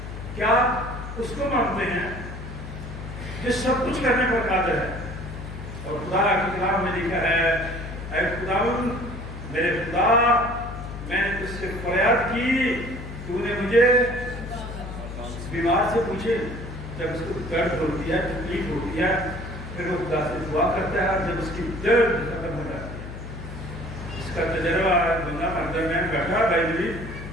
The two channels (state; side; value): noise; left; hum, 9 dB below the sound